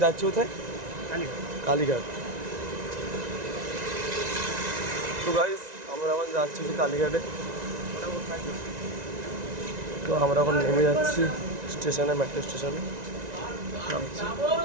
যাচ্ছি কোথায়? কালীঘাট। তো গাইস আমরা এখন যাচ্ছি কালীঘাটে। তো আমরা এখন নেমে যাচ্ছি স্টেশনে, মেট্রো স্টেশনে নামছি।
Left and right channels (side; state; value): left; late; 1.9 ms